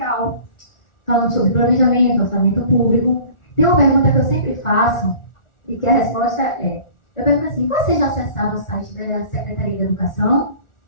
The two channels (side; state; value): right; late; 1.4 ms